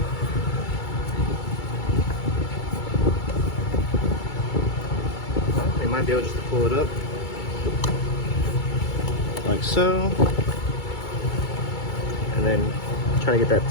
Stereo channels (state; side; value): late; right; 2.3 ms